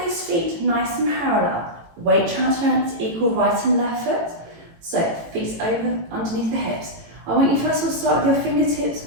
those feet nice and parallel. Weight transference equal right and left foot. So feet over underneath the hips. I want you first of all to start with your fingertips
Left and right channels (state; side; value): late; left; 18 ms